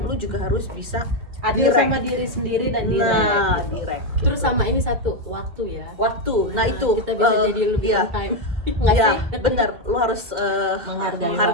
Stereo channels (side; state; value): left; late; 2.1 ms